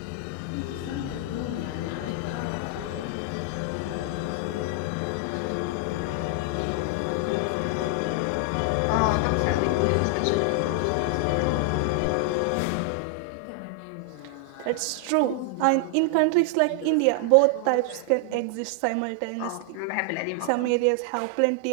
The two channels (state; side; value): different; both; correlation 0.00